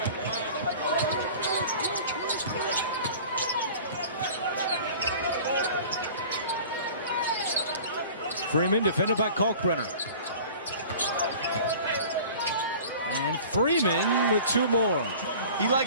Freeman defended by Kalkbrenner. And Freeman with two more. He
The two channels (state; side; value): inverted; both; correlation -0.43